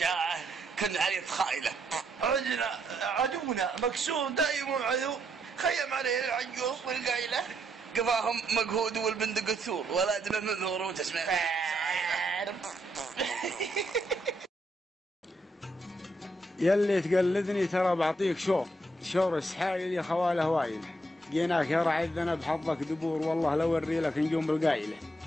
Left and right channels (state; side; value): normal; both; correlation 0.77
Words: كن عليه تخايله. عدونا مكسور دايم عدو، خيم عليه العجوز والقايله. قفاهم مقهود والبندق الثور، ولا دمه منذور وتسمع يلي تقلدني ترى بعطيك شور السحايل يا خواله وايل. جيناك يا رعي الذنب حظك دبور، والله لو وري لك نجوم بالقايله.